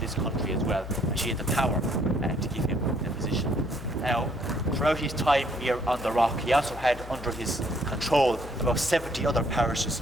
country as well, and she had the power to give him the position. Now, throughout his time here on the rock, he also had under his control about 70 other parishes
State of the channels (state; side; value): noise; left; hum, 13 dB below the sound